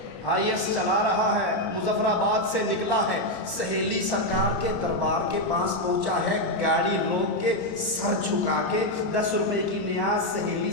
آئی ایس چلا رہا ہے، مظفر آباد سے نکلا ہے، سہیلی سرکار کے دربار کے پاس پہنچا ہے، گاڑی روک کے سر جھکا کے 10 روپے کی نیاز سہیلی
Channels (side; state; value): right; late; 28 ms